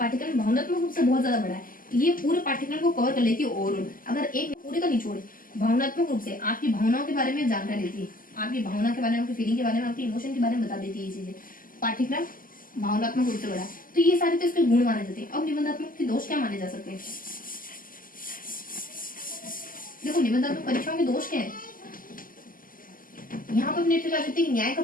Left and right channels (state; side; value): late; right; 0.41 ms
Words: भावनात्मक रूप से बहुत ज्यादा बड़ा है, ये पूरे पाठ्यक्रम को कवर कर लेती है ओवरऑल। अगर एक पूरे का निचोड़ भावनात्मक रूप से आपकी भावनाओं के बारे में जानकारी देती है, आपकी भावना के बारे में, आपकी फीलिंग के बारे में, आपकी इमोशन के बारे में बता देती है ये चीजें। पाठ्यक्रम भावनात्मक रूप से बड़ा है, तो ये सारे तो इसके गुण माने जाते हैं। अब निबंधात्मक के दोष क्या माने जा सकते हैं। देखो निबंधात्मक परीक्षाओं के दोष क्या है, यहाँ पर अपने आ सकते हैं न्याय का